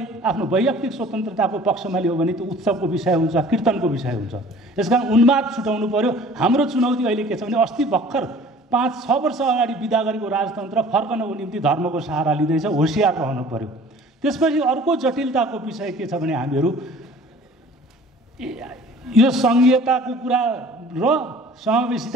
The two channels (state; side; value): normal; both; correlation 0.48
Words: आफ्नो वैयक्तिक स्वतन्त्रताको पक्षमा लियो भने त्यो उत्सवको विषय हुन्छ, कीर्तनको विषय हुन्छ। यसकारण उन्माद छुटाउनु पर्यो। हाम्रो चुनौती अहिले के छ भने अस्ति भर्खर 5-6 वर्ष अगाडि बिदा गरेको राजतन्त्र फर्कनको निम्ति धर्मको सहारा लिँदैछ, होसियार रहनु पर्यो। त्यसपछि अर्को जटिलताको विषय के छ भने हामीहरू यो सङ्घीयताको कुरा र